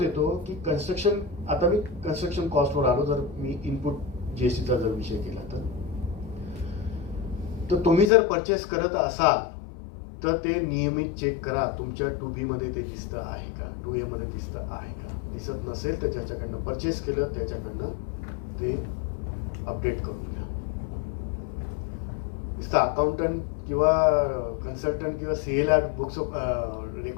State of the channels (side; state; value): right; drops out; at 8.1 s